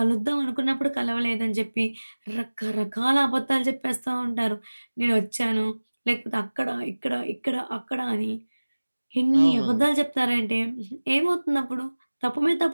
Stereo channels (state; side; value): inverted; both; correlation -1.00